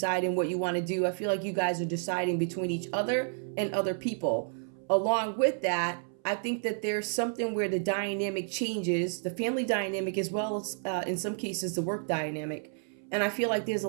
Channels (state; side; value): silent; left; 57 dB below the other